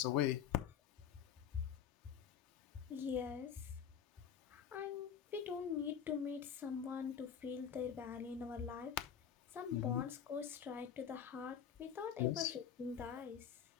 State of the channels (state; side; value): quieter; right; 8.3 dB